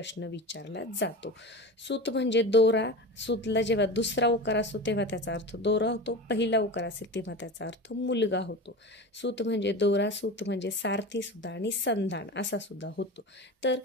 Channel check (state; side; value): normal; both; correlation 0.29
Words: विचारला जातो. सूत म्हणजे दोरा. सूतला जेव्हा दुसरा उकार असतो तेव्हा त्याचा अर्थ दोरा होतो, पहिला उकार असेल तेव्हा त्याचा अर्थ मुलगा होतो. सूत म्हणजे दोरा, सूत म्हणजे सारथी सुद्धा आणि संधान असा सुद्धा होतो. तर